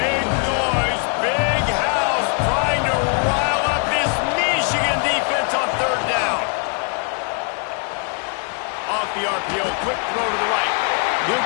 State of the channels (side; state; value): right; quieter; 39.9 dB